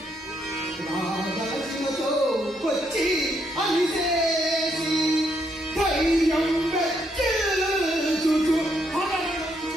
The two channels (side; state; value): both; normal; correlation 0.75